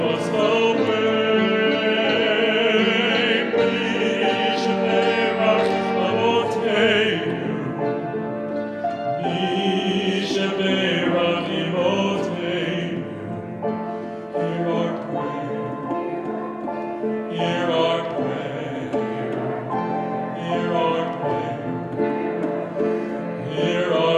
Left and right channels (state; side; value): identical; both; correlation 1.00